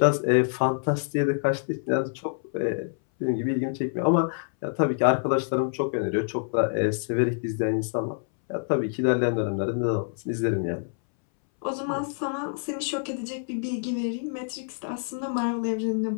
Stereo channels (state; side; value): silent; right; 60 dB below the other